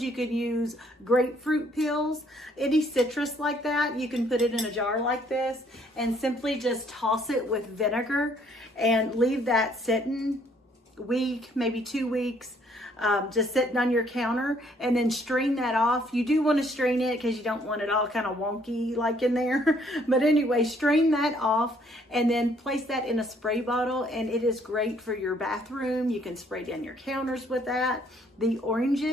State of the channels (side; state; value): both; normal; correlation 0.65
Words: You can use grapefruit peels. Any citrus like that, you can put it in a jar like this and simply just toss it with vinegar and leave that sitting a week, maybe 2 weeks. Just sitting on your counter, and then strain that off. You do want to strain it because you don't want it all kind of wonky like in there. But anyway, strain that off and then place that in a spray bottle, and it is great for your bathroom. You can spray down your counters with that. The